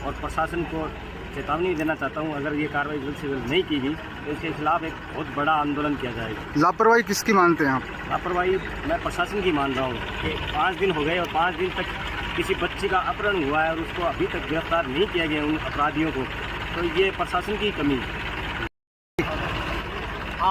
और प्रशासन को चेतावनी देना चाहता हूं, अगर ये कार्रवाई जल्द से जल्द नहीं की गई तो इसके खिलाफ एक बहुत बड़ा आंदोलन किया जाएगा। लापरवाही किसकी मानते हैं आप? लापरवाही मैं प्रशासन की मान रहा हूँ कि 5 दिन हो गए और 5 दिन तक किसी बच्ची का अपहरण हुआ है और उसको अभी तक गिरफ्तार नहीं किया गया उन अपराधियों को, तो ये प्रशासन की कमी है।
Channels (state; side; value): identical; both; correlation 1.00